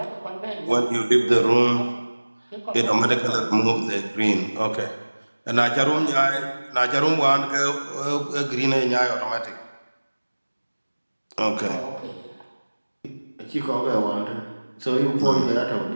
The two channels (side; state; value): both; inverted; correlation -1.00